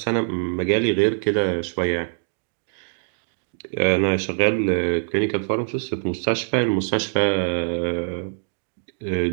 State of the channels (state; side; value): silent; left; digital silence